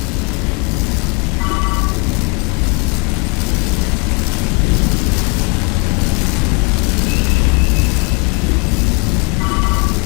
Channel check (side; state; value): right; quieter; 30.3 dB